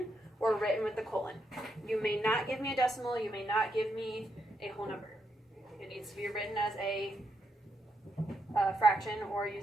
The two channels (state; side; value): normal; both; correlation 0.80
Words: or written with the colon. You may not give me a decimal. You may not give me a whole number. It needs to be written as a fraction or